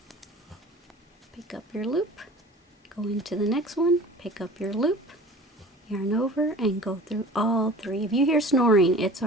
Pick up your loop, go into the next one, pick up your loop, yarn over, and go through all 3. If you hear snoring, it's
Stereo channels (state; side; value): normal; both; correlation 0.42